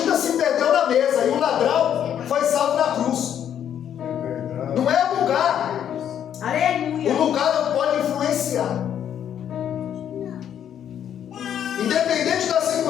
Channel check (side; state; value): right; quieter; 9.6 dB